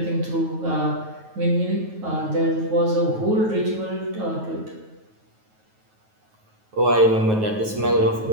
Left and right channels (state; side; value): late; left; 9.3 ms